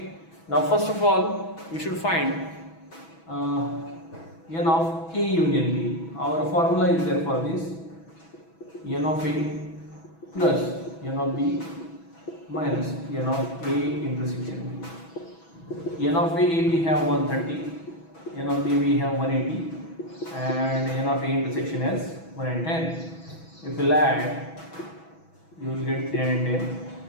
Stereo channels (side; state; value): right; late; 6.1 ms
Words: now first of all we should find N of A union B. Our formula is there for this. N of A plus N of B minus N of A intersection B. N of A we have 130, N of B we have 180, and N of A intersection is 110. If you add, you will get 310.